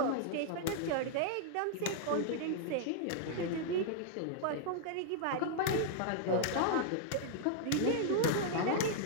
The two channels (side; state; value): both; different; correlation -0.01